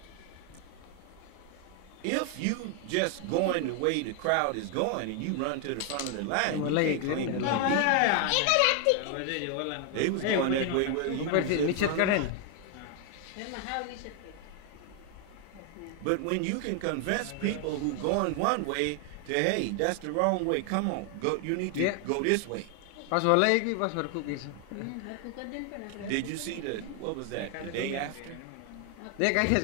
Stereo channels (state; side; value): different; both; correlation 0.00